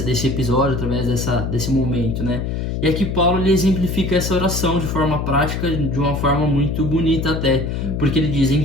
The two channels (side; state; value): left; noise; hum, 2 dB below the sound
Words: episódio, através desse momento, né? E aqui Paulo ele exemplifica essa oração de forma prática, de uma forma muito bonita até, porque ele diz, em